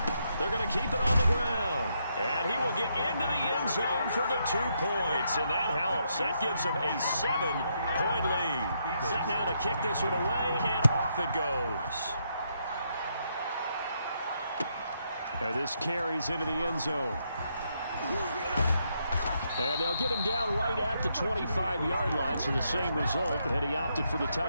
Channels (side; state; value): both; inverted; correlation -0.77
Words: They're going to keep it on the ground. And he will get into the end zone for the 2 points. And that helps. That gives him a 7-point lead. Set now to kick this one away, and off it goes. And this carries into the end zone. And they'll get him down right at the 25-yard line, so the same result, and he opted for the